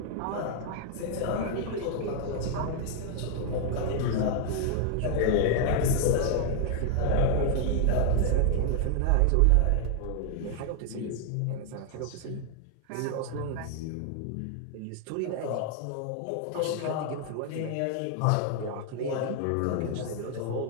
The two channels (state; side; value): different; both; correlation 0.00